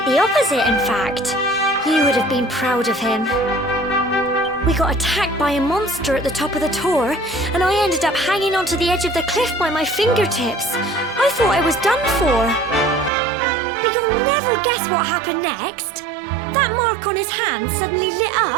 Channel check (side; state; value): left; drops out; at 13.1 s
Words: the opposite, in fact. You would have been proud of him. We got attacked by a monster at the top of the tower, and I ended up hanging onto the edge of the cliff by my fingertips. I thought I was done for. But you'll never guess what happened next. That mark on his hand suddenly lit